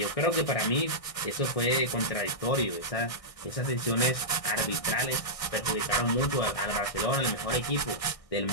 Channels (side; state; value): right; late; 1.6 ms